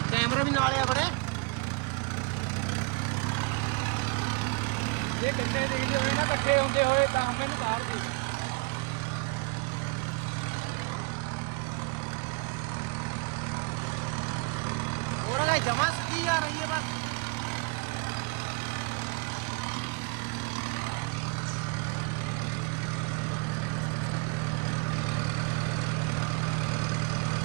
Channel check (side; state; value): left; quieter; 32.3 dB